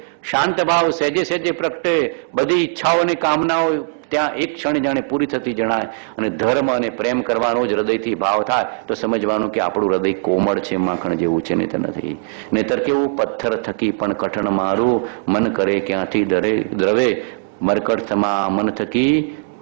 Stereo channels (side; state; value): left; silent; digital silence